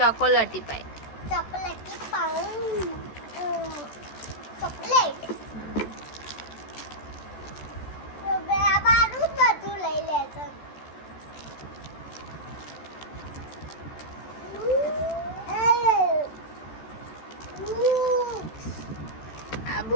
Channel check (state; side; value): late; right; 14 ms